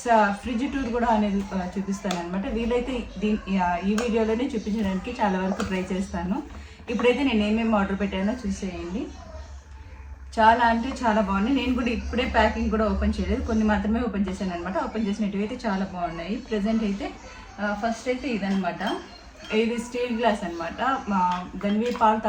ఫ్రిడ్జ్ టూర్ కూడా అనేది చూపిస్తాను అనమాట. వీలైతే ఈ వీడియోలోనే చూపించడానికి చాలా వరకు ట్రై చేస్తాను. ఇప్పుడైతే నేను ఏమేమి ఆర్డర్ పెట్టానో చూసేయండి. చాలా అంటే చాలా బాగున్నాయి. నేను కూడా ఇప్పుడే ప్యాకింగ్ కూడా ఓపెన్ చేయలేదు, కొన్ని మాత్రమే ఓపెన్ చేశాను అనమాట. ఓపెన్ చేసినట్టు అయితే చాలా బాగున్నాయి. ప్రజెంట్ అయితే ఫస్ట్ అయితే ఇదనమాట. ఇది స్టీల్ గ్లాస్ అనమాట. గన్వీ పాలు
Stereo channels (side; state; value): both; identical; correlation 1.00